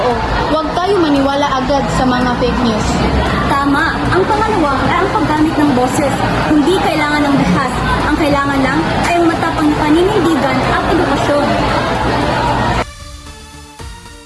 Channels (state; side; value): identical; both; correlation 1.00